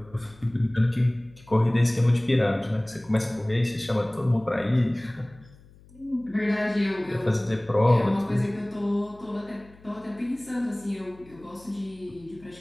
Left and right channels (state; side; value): noise; left; hum, 25 dB below the sound